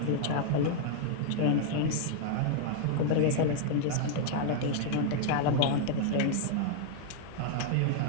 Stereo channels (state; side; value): different; both; correlation 0.00